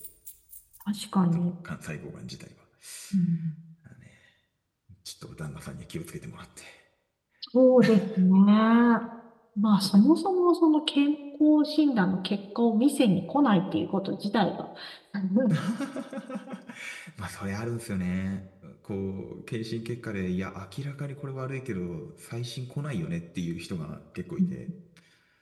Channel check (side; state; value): both; identical; correlation 1.00